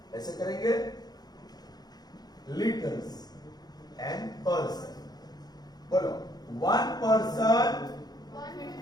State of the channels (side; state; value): right; late; 0.19 ms